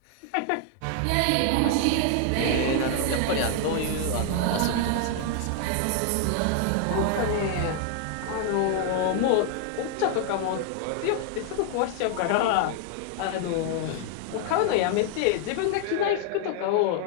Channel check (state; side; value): different; both; correlation 0.00